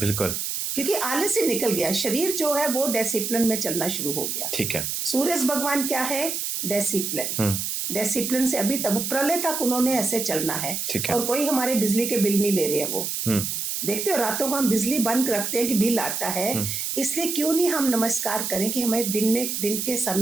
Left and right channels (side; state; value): right; noise; hiss, 2 dB below the sound